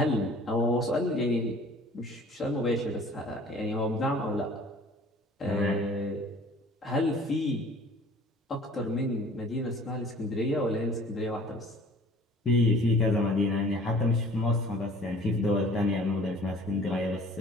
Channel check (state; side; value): normal; both; correlation 0.49